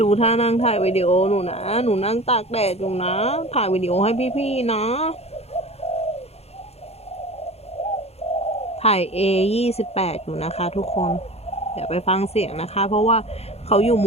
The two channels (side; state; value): right; late; 0.30 ms